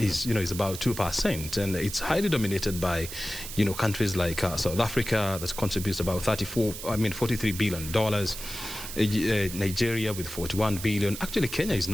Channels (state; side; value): noise; right; hiss, 9 dB below the sound